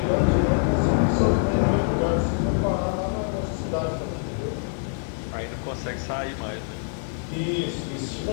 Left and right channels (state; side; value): silent; right; digital silence